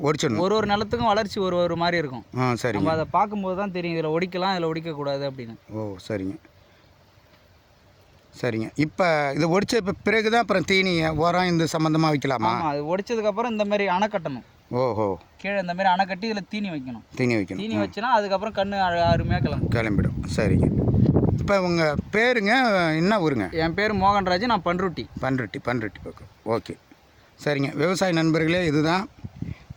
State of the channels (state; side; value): identical; both; correlation 1.00